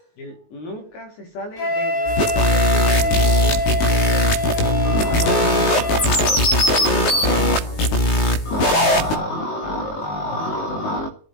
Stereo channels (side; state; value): right; late; 19 ms